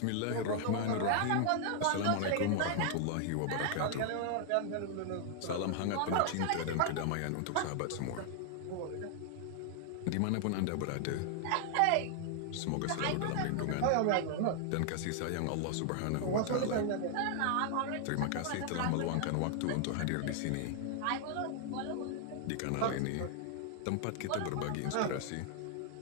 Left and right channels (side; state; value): both; different; correlation 0.00